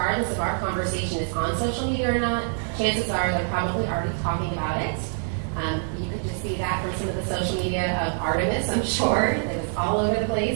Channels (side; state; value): left; silent; 62 dB below the other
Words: if our conversation is on social media or not, chances are they're probably already talking about it. You could just see that from some of the social media of Artemis, I'm sure. It was all over the